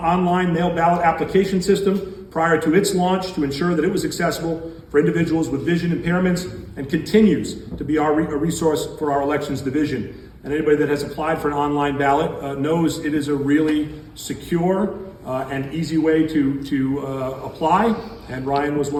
mail ballot application system prior to its launch to ensure that it was accessible for individuals with vision impairments, and continues to be a resource for our elections division. And anybody that has applied for an online ballot knows it is a really secure and easy way to apply, and Ryan was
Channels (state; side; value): identical; both; correlation 1.00